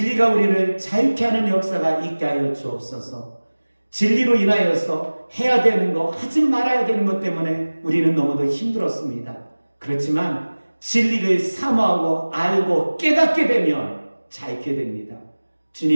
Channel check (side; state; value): both; inverted; correlation -1.00